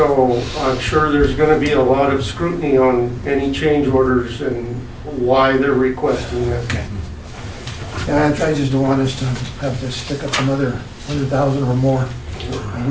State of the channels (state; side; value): identical; both; correlation 1.00